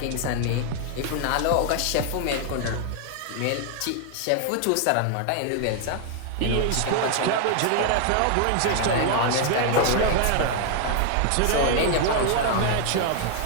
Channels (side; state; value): both; different; correlation 0.00